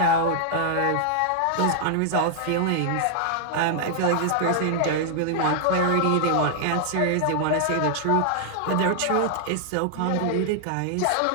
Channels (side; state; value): both; different; correlation -0.01